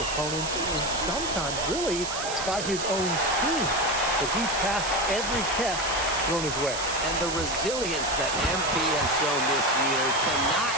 and sometimes really by his own team. But he's passed every test thrown his way. And the resilience that MP has shown this year cannot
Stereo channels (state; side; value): noise; right; hiss, 6 dB below the sound